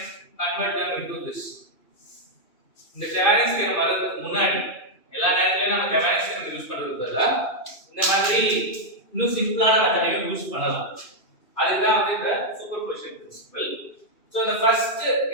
convert them into this இந்த Thevenin's தியரம் வரதுக்கு முன்னாடி எல்லா நேரத்துலயும் நம்ம Thevenin's தியரம் யூஸ் பண்றதுக்கு பதிலா இந்த மாதிரி இன்னும் சிம்பிளான மெத்தடையும் யூஸ் பண்ணலாம் அதுதான் வந்து இந்த superposition principle So the first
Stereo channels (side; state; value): right; late; 2.6 ms